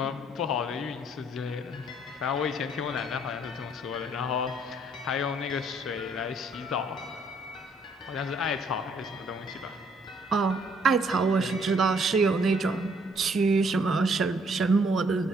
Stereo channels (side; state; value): both; normal; correlation 0.65